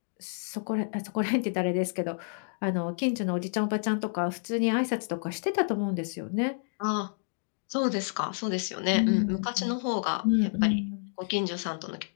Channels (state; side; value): silent; right; digital silence